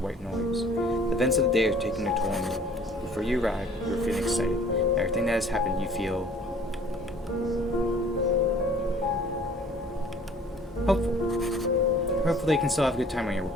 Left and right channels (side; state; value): both; normal; correlation 0.53